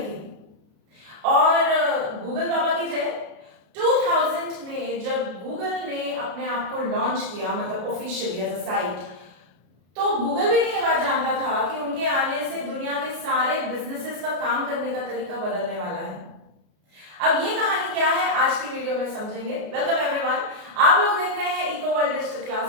और गूगल बाबा की जय, 2000 में जब गूगल ने अपने आप को लॉन्च किया, मतलब ऑफिशियली एज अ साइट, तो गूगल भी नहीं ये बात जानता था कि उनके आने से दुनिया के सारे बिजनेसेस का काम करने का तरीका बदलने वाला है। अब ये कहानी क्या है आज की वीडियो में समझेंगे। वेलकम एवरीवन, आप लोग देख रहे हैं इको वर्ल्ड डिजिटल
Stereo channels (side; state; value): left; late; 33 ms